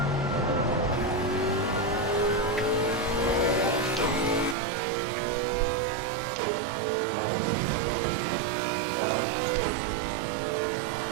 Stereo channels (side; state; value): left; drops out; at 4.5 s